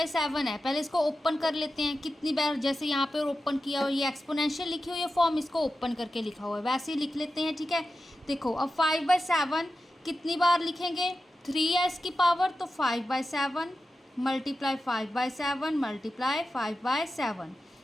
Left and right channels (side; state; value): both; normal; correlation 0.92